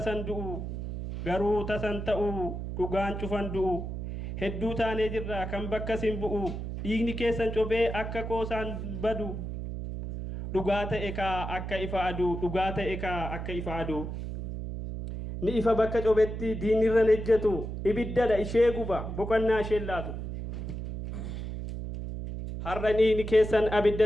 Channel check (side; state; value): right; noise; hum, 6 dB below the sound